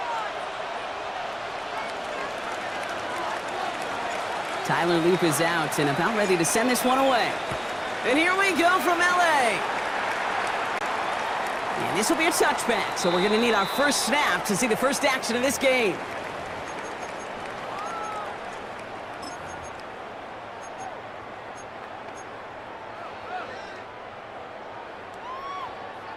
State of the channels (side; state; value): both; identical; correlation 1.00